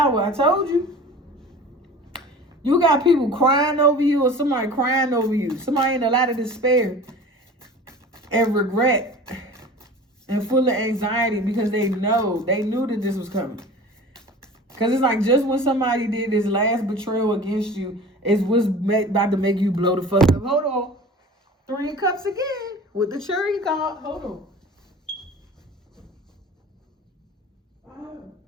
I told you. You got people crying over you, or somebody crying over you. Somebody in a lot of despair and regret and full of anxiety because they knew that this was coming. Because it's like, just when somebody did this last betrayal against you, is what's about to make you blow the fuck up. Hold on. 3 of Cups again with the cherry card. Hold on.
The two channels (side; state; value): both; normal; correlation 0.40